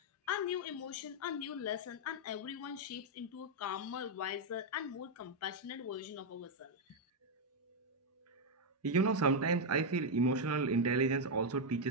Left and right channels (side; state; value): both; normal; correlation 0.02